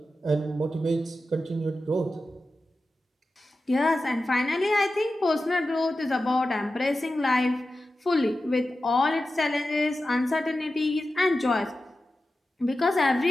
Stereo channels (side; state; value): both; normal; correlation 0.93